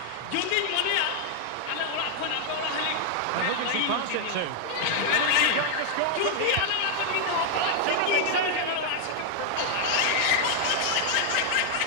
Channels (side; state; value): both; different; correlation 0.00